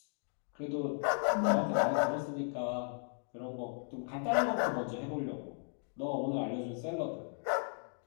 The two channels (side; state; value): right; silent; 54 dB below the other